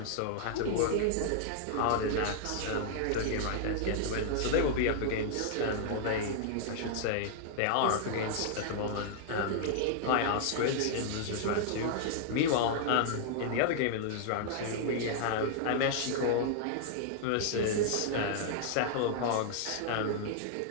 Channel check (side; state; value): both; different; correlation -0.01